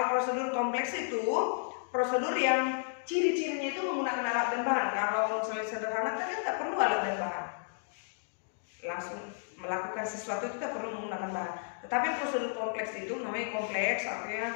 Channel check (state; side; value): silent; right; digital silence